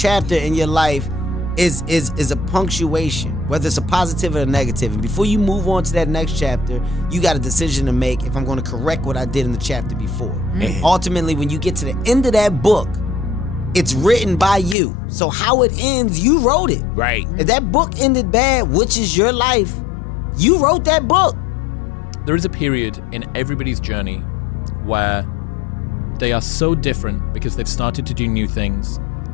in your life is a punctuation, whether it's a positive or a negative. And before you move on to that next chapter, you got a decision to make if I'm going to correct what I did in the chapter before. And ultimately, when you get to the end of that book, it's written by you. So how it ends, you wrote it. Right. If that book ended bad, which is your life, you wrote that book. There is a period in everybody's journey where they are so different because they've started to do new things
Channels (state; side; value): drops out; right; at 14.8 s